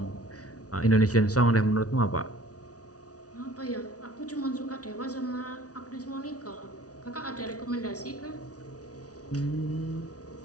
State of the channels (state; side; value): late; right; 0.68 ms